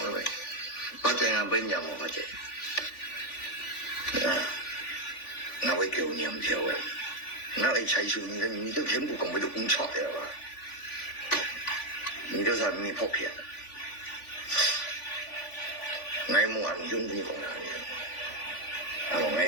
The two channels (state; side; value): late; right; 3.5 ms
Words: người phát triển ở bên nhà một phát triển nó với kiểu niệm theo ấy nó ấy chạy xuống你都全部講俾到咁錯嘅話，你都係咩破片？我冇人中意講人嘅，我